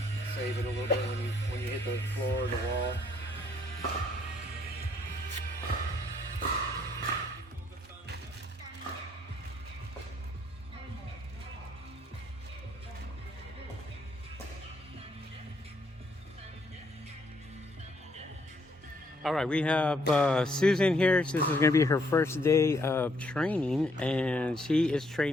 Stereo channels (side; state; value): both; normal; correlation 0.69